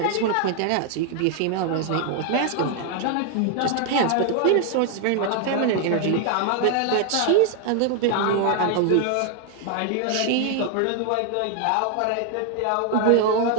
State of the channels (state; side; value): different; both; correlation 0.00